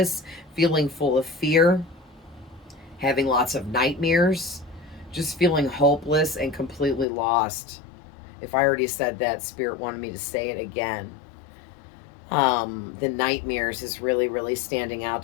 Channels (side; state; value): right; drops out; at 7.1 s